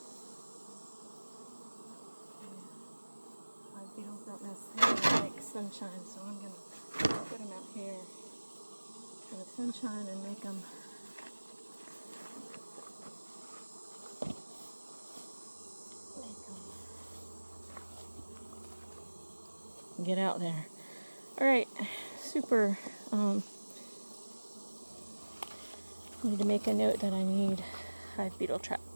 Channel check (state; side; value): inverted; both; correlation -1.00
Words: Hive beetles don't necessarily like sunshine, so I'm gonna put them out here for the sunshine and make them. Get out there. Alright, super. Need to make a note that I need hive beetle